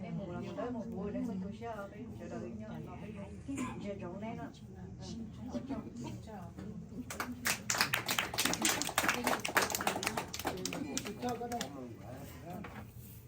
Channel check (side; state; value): both; identical; correlation 1.00